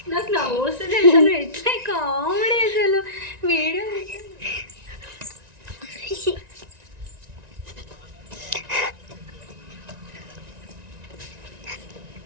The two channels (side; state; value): left; late; 1.9 ms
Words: నాకు నా వస్తుంది అసలు. ఎట్లా కామెడీ అసలు వీడియో.